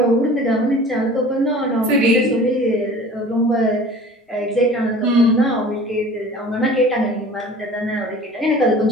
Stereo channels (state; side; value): normal; both; correlation 0.44